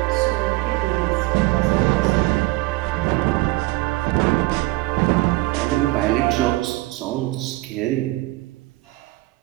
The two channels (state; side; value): quieter; left; 20.4 dB